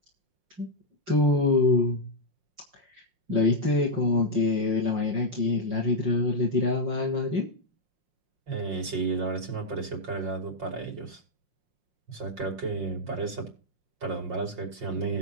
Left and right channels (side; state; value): left; late; 5.6 ms